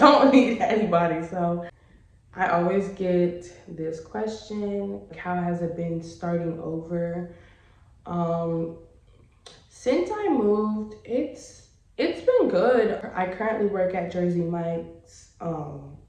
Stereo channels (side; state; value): both; identical; correlation 1.00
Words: need anybody. So I always get this question, how has it been starting over? Since I moved, it's been good. I currently work at Jersey Mike's.